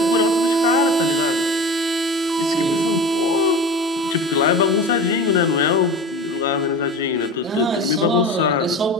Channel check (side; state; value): both; normal; correlation 0.33